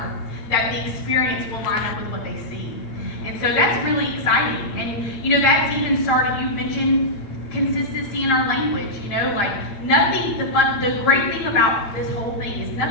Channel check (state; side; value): late; right; 8.9 ms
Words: that the experience will line up with what they see. And so that's really exciting. And, that's even started, you mentioned consistency in our language, like nothing, the great thing about this whole thing is